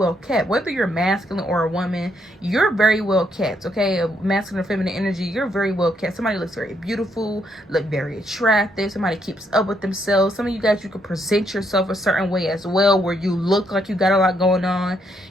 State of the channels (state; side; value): normal; both; correlation 0.75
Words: kept. Whether you're masculine or a woman, you're very well kept, okay? A masculine or feminine energy, you're very well kept. Somebody looks very beautiful, look very attractive. Somebody keeps up with themselves. Some of you guys, you could present yourself a certain way as well, where you look like you got a lot going on,